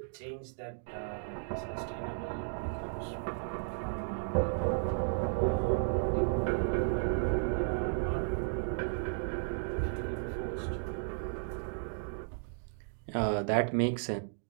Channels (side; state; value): left; silent; digital silence